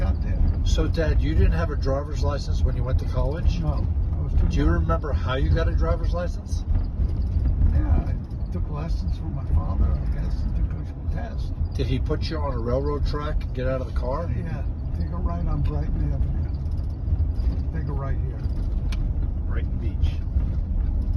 there. So, Dad, you didn't have a driver's license when you went to college? No, I was too Do you young. remember how you got a driver's license? Yeah, I took lessons from my father, I guess, and took a test. Did he put you on a railroad track and get out of the car? Yeah, take a right on Brighton Avenue. Take a right here, Brighton Beach.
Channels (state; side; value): identical; both; correlation 1.00